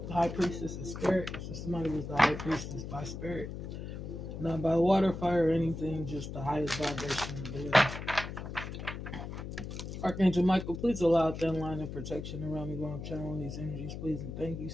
high priestess of spirit. So somebody was the high priestess by spirit. Not by water, fire, or anything, just the highest vibration of the living. Archangel Michael, please allow thin line of protection around me while I'm channeling these energies, please and thank you.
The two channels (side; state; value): left; noise; hum, 7 dB below the sound